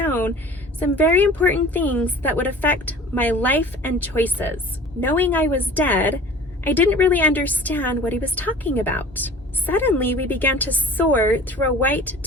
some very important things that would affect my life and choices. Knowing I was dead, I didn't really understand what he was talking about. Suddenly, we began to soar through a white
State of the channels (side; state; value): both; normal; correlation 0.43